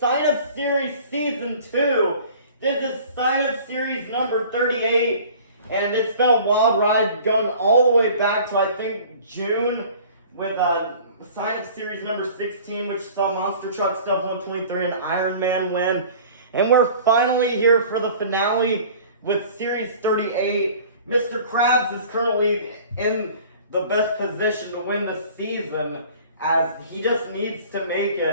Sign Up Series Season 2. This is Sign Up Series number 38, and it's been a wild ride going all the way back to I think June with Sign Up Series number 16, which saw Monster Truck Stuff 123 and Iron Man win. And we're finally here for the finale with Series 38. Mr. Krabs is currently in the best position to win the season, as he just needs to make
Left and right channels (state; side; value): inverted; both; correlation -0.47